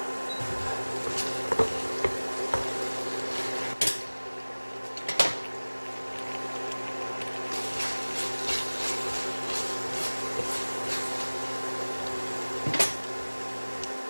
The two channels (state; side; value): inverted; both; correlation -1.00